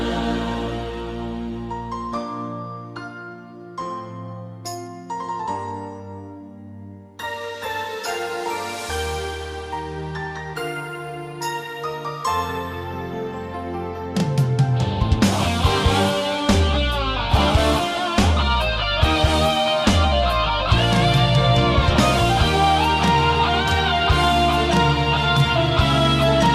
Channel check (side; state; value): both; identical; correlation 1.00